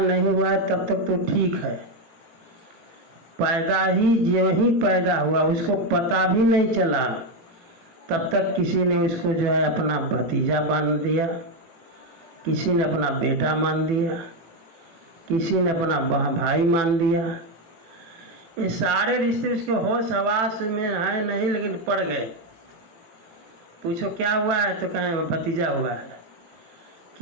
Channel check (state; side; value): late; left; 18 ms